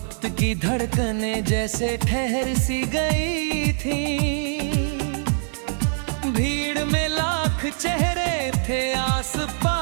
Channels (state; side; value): silent; left; digital silence